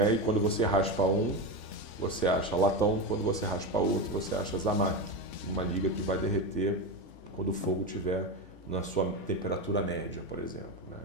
e quando você raspa um, você acha latão, quando você raspa outro, você acha Zamac, uma liga que vai derreter quando o fogo estiver na sua temperatura média, por exemplo, né?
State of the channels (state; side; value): late; right; 3.5 ms